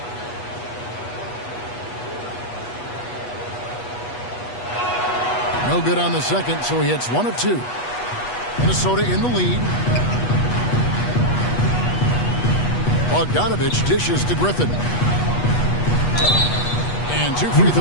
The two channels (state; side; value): late; right; 8.3 ms